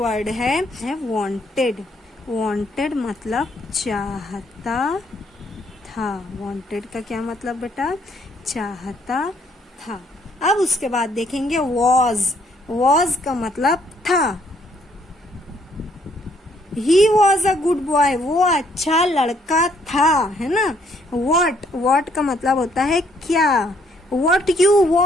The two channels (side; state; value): both; normal; correlation 0.67